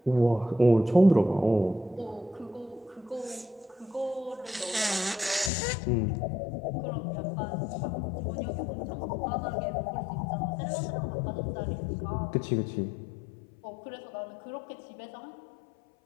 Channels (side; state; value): right; drops out; at 5.5 s